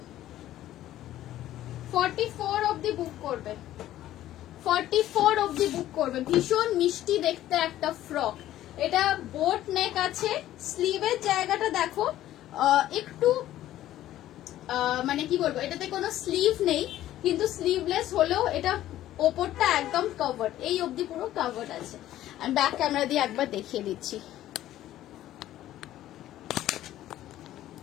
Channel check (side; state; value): right; quieter; 13.5 dB